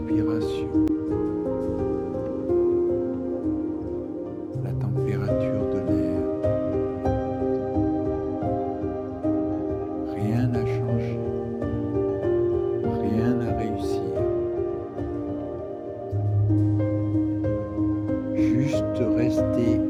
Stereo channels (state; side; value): identical; both; correlation 1.00